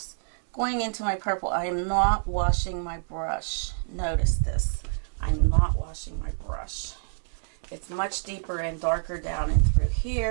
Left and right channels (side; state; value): left; silent; 60 dB below the other